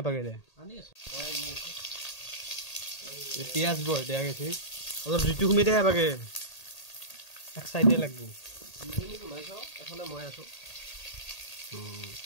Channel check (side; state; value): right; late; 1.8 ms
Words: দে পিয়াজ বয় দেয়া গেছে অলপ জুইটো কমি দে হেবাগে এক সাইডে লাগবো তুমি কমাইছো এফালে মই আছো